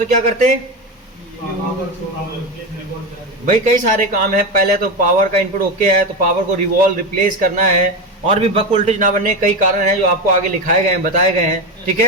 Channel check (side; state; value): both; normal; correlation 0.16